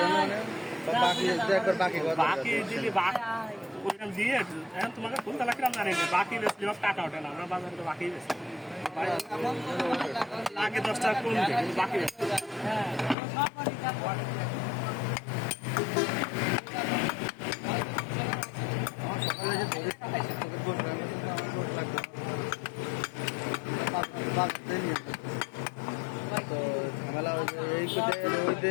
মানে বাকি একবার বাকি বাকি দিলি ওইরকম দিয়ে এখন তোমাকে ফুলতলা কিরাম জানি না বাকি বেশি টাকা ওঠে না আমরা বাজারে তো বাকি বেশি আগে 10 টাকা কম দেয় বাকি বেশি সকালে যে তো ঝামেলা এই ওই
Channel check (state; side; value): drops out; right; at 13.2 s